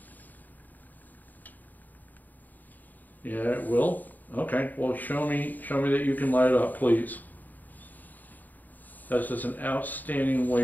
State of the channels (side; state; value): right; late; 0.085 ms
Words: Yeah, it will. Okay, well, show me that you can light it up, please. That's just an outstanding